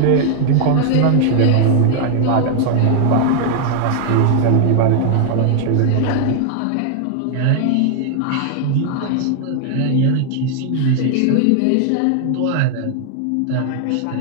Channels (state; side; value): different; both; correlation 0.00